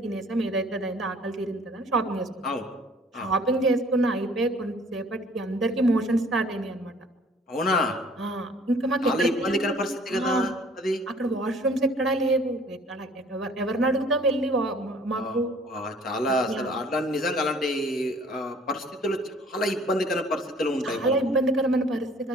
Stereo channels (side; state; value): both; normal; correlation 0.54